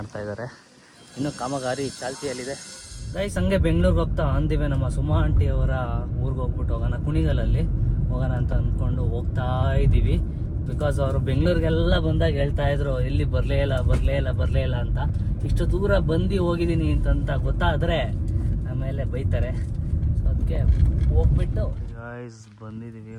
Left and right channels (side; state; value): both; identical; correlation 1.00